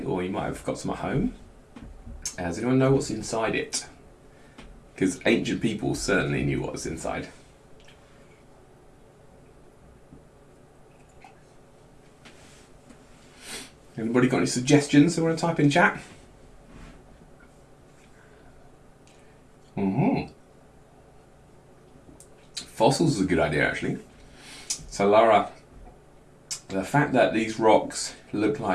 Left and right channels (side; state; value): both; identical; correlation 1.00